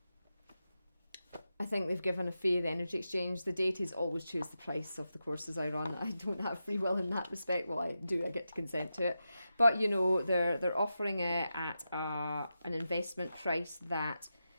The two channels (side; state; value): both; inverted; correlation -0.89